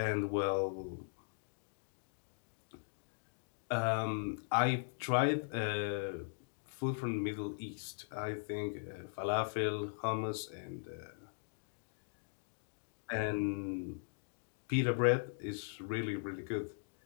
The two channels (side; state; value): right; silent; digital silence